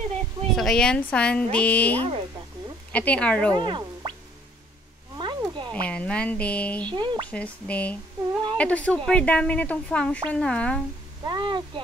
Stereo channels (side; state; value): both; normal; correlation 0.60